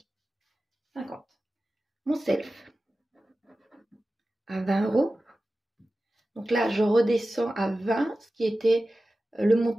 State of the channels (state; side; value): normal; both; correlation 0.95